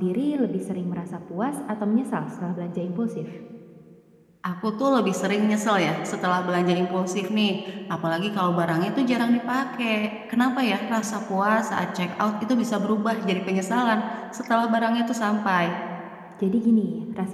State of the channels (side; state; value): both; identical; correlation 1.00